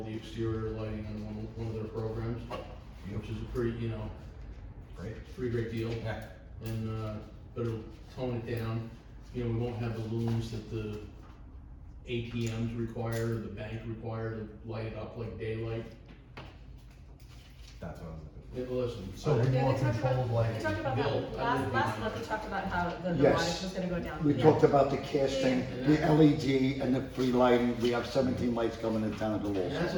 the exterior lighting on one of their programs, which is a pretty, Great. pretty great deal. Yeah. And, but it'll tone it down. We won't have the looms that the ATMs require, the bank require to light it up like daylight. That's what I was looking Listen, So we Yeah, more they talked control about, of they lighting. talked about Bill, that, I live last in- month, they talked about how the Yes. light was gonna go down. We Yeah. talked about the casting, the LED, and the free lighting. We have 17 lights coming in Tannersville and that's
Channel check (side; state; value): both; identical; correlation 1.00